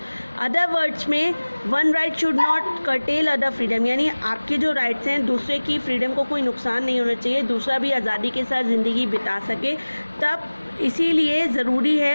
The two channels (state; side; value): inverted; both; correlation -1.00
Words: अदर वर्ड्स में, one right should not cartel other freedom, यानी आपके जो राइट्स हैं, दूसरे की फ्रीडम को कोई नुकसान नहीं होना चाहिए, दूसरा भी आज़ादी के साथ ज़िंदगी बिता सके। तब इसीलिए ज़रूरी